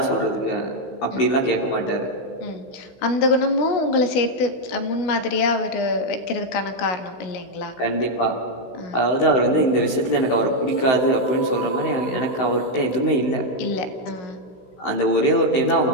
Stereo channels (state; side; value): late; right; 16 ms